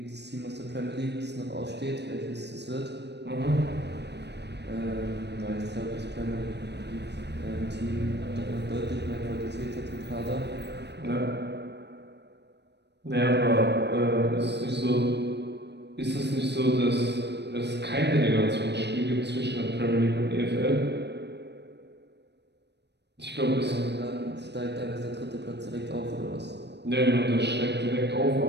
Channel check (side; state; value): left; late; 0.50 ms